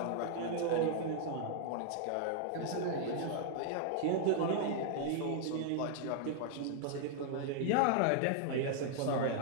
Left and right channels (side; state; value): both; different; correlation -0.01